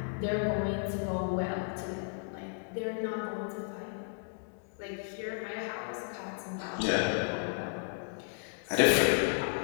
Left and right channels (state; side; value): silent; right; 55 dB below the other